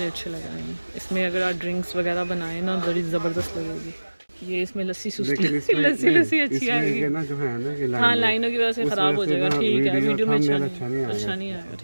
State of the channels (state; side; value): inverted; both; correlation -1.00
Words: अच्छे लग रहे हैं। इसमें अगर आप ड्रिंक्स वगैरह बनाएं ना, बड़ी ज़बरदस्त लगेगी। ये इसमें लस्सी लस्सी अच्छी आएगी ना जो है ना कि हाँ, लाइनों की वजह से ख़राब हो जाएगा। ठीक है, वीडियो में अच्छा नहीं आएगा।